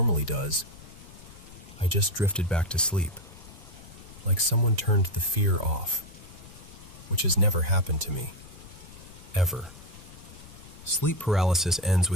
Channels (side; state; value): left; noise; rumble, 18 dB below the sound